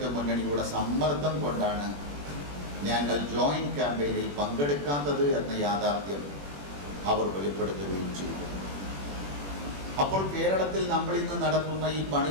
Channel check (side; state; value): left; late; 21 ms